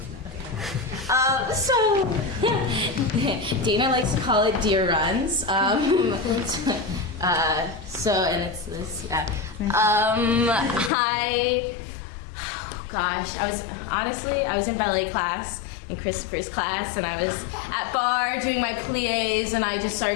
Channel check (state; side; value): drops out; right; at 10.9 s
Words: Dana likes to call it deer runs. And it's this, yeah. I was in ballet class, in Christopher's class, and I was at bar doing my pliés, and I just